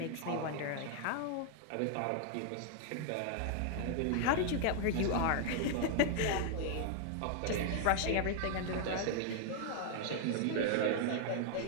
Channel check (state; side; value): different; both; correlation 0.00